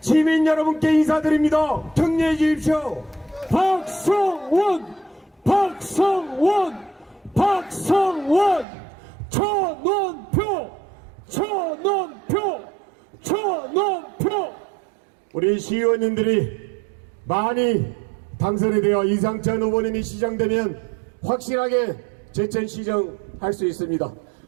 여러분께 인사드립니다. 격려해 주십시오. 박성원 전원표 우리 시의원님들이 많이 당선이 되어 이상찬 후보님이 시장되면 확실하게 제천시정 할 수 있습니다.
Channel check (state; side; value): drops out; left; at 8.7 s